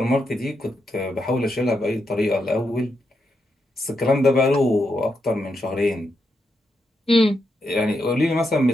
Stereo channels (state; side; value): normal; both; correlation 0.83